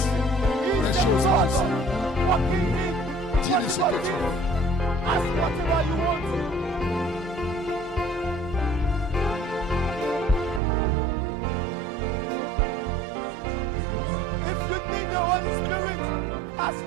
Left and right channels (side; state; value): left; drops out; at 10.6 s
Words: des choses impossibles. Dis-lui ce que tu veux. Si tu as besoin du Saint-Esprit, dis-lui ce que tu veux. Si tu as